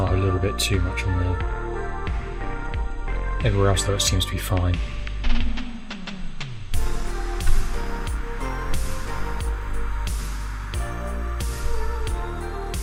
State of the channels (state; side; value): identical; both; correlation 1.00